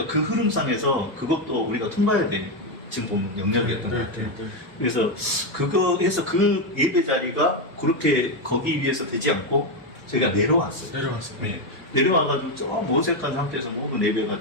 그 흐름상에서 그것도 우리가 통과해야 돼. 지금 보면 영역이었던 것 같아요. 그래서 그거 해서 그 예배 자리가 그렇게 거기 위해서 되지 않고 저희가 내려왔어요. 네. 내려와가지고 저 어색한 상태에서 모든 예배가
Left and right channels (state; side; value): normal; both; correlation 0.06